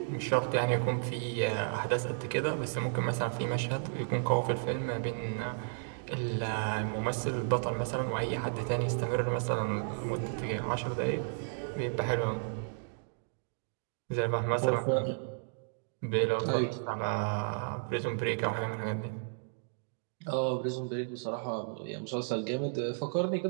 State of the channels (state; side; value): silent; left; digital silence